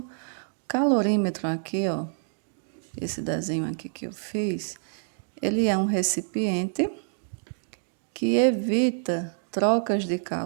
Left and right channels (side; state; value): left; silent; digital silence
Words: calorímetro aqui, ó, esse desenho aqui que eu fiz, ele é um recipiente que evita trocas de